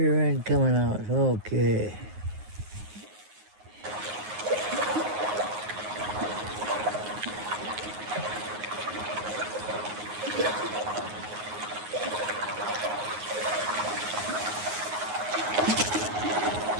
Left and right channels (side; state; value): left; late; 9.5 ms